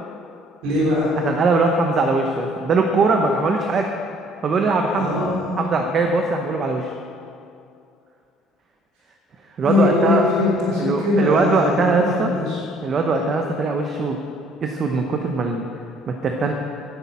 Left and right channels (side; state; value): both; normal; correlation 0.60